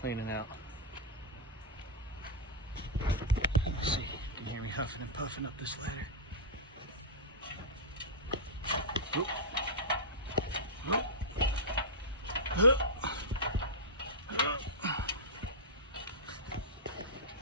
out. Let's see, you can hear me huffing and puffing up this ladder. Oop.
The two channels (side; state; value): both; normal; correlation -0.09